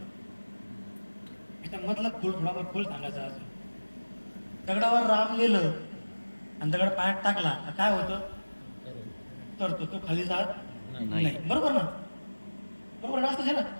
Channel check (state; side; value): inverted; both; correlation -1.00